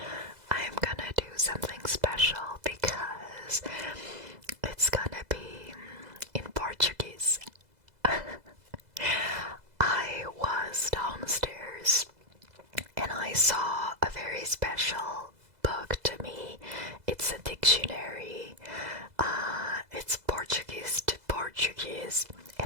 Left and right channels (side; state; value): left; late; 2.0 ms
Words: I'm gonna do something special because it's gonna be in Portuguese. I was downstairs and I saw a very special book to me. It's a dictionary. It's Portuguese to Portuguese,